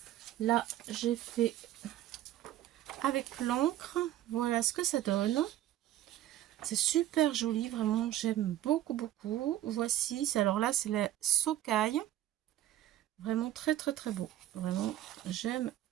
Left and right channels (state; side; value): quieter; left; 13.3 dB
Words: Là, j'ai fait avec l'encre. Voilà ce que ça donne. C'est super joli, vraiment, j'aime beaucoup, beaucoup. Voici, alors là, c'est la Socaille. Vraiment très, très, très beau. Vraiment, j'aime